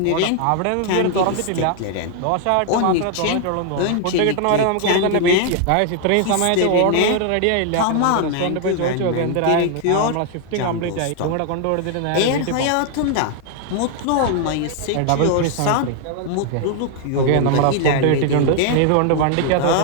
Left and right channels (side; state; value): both; different; correlation 0.00